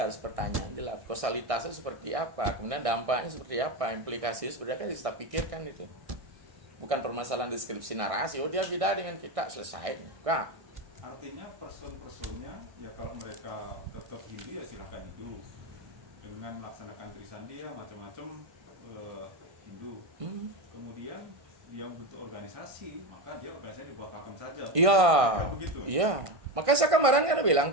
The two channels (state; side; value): late; left; 1.6 ms